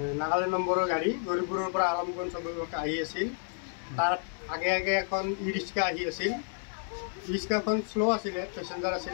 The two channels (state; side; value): silent; right; digital silence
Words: নাগালেণ্ড নম্বৰৰ গাড়ী গৌৰীপুৰৰ পৰা আলমগঞ্জ অভিমুখে আহি আছিল। তাৰ আগে আগে এখন ই ৰিক্সা আহি আছিল। ই ৰিক্সাখন শ্ল' আছিলে, পেচেঞ্জাৰ